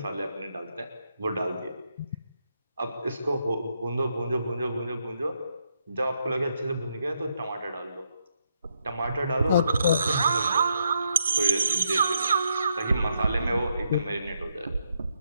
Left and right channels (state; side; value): inverted; both; correlation -0.78